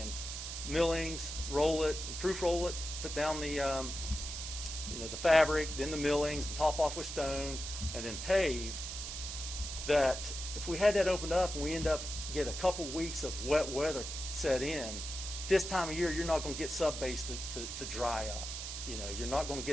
millings, roll it, proof roll it, put down the fabric, then the millings, and top off with stone, and then pave, that if we had that opened up and we end up get a couple weeks of wet weather set in, this time of year, you're not going to get sub-base to dry up. You know, you're not going to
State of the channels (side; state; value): right; noise; hiss, 6 dB below the sound